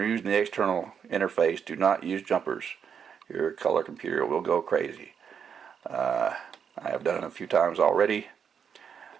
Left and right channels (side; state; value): left; quieter; 7.3 dB